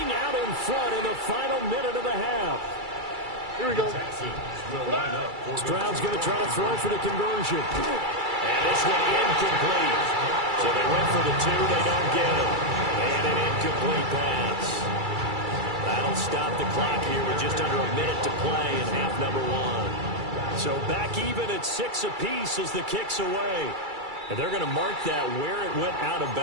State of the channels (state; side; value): late; left; 2.3 ms